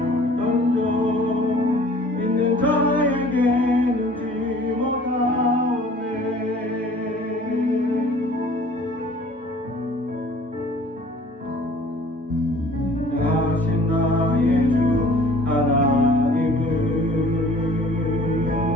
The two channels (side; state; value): both; normal; correlation 0.50